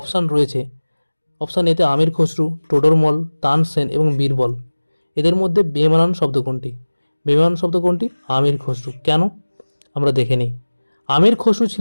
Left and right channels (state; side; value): inverted; both; correlation -1.00